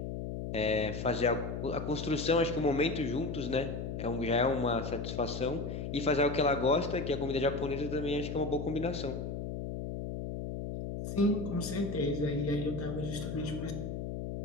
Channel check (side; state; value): left; noise; hum, 5 dB below the sound